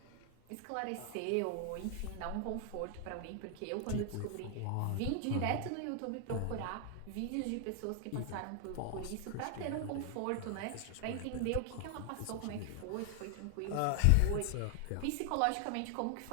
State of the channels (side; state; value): both; different; correlation 0.00